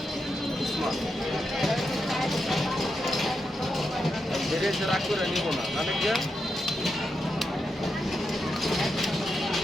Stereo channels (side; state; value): both; normal; correlation 0.86